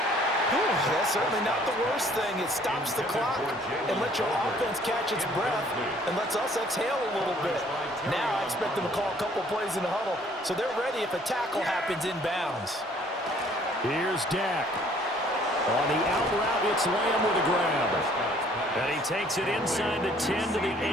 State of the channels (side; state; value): both; normal; correlation 0.59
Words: That's certainly not the worst thing. It stops the clock and lets your offense catch its breath and lets us exhale a little bit. Now I expect them to call a couple plays in the huddle so they're ready if a tackle happens inbounds. Here's Dak. On the out route, it's Lamb with a grab. And he takes it inside the 10 to the